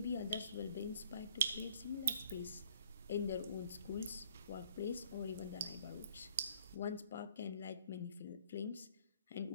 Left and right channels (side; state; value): both; inverted; correlation -0.58